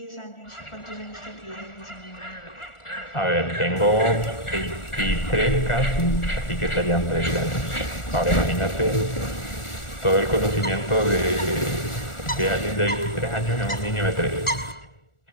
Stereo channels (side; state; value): right; late; 1.4 ms